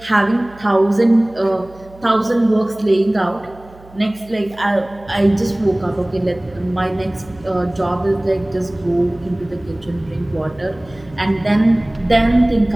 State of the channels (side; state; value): right; noise; hum, 23 dB below the sound